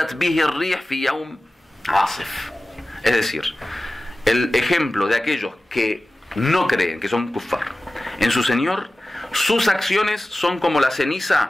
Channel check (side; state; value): both; normal; correlation 0.96